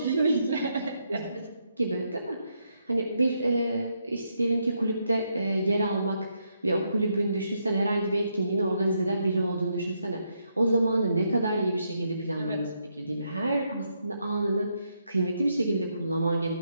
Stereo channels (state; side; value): inverted; both; correlation -0.78